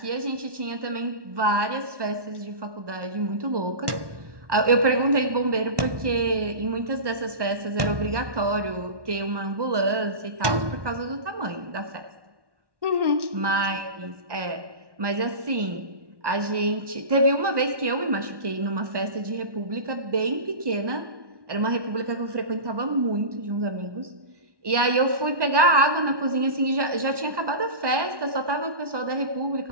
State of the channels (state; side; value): late; left; 1.1 ms